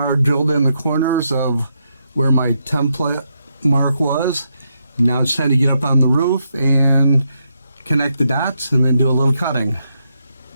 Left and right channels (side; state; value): both; inverted; correlation -0.80